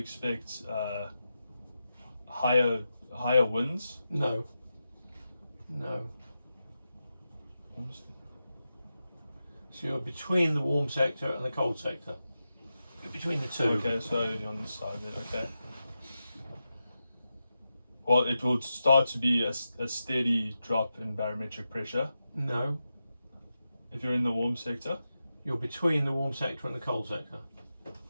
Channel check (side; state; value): both; inverted; correlation -0.90